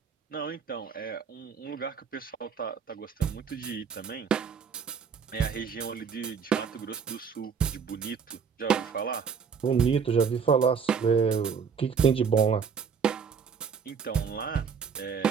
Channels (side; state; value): left; quieter; 6.4 dB